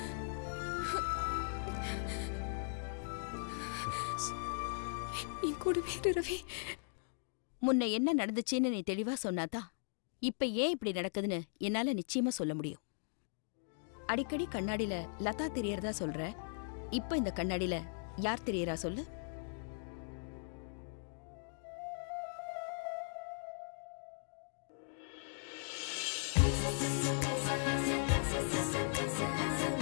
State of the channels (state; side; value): silent; right; digital silence